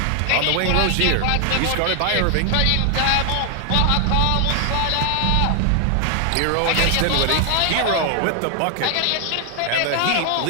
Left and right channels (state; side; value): different; both; correlation 0.00